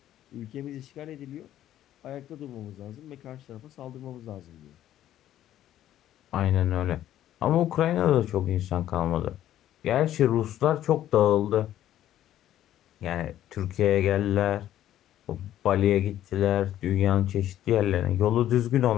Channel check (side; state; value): right; quieter; 12.3 dB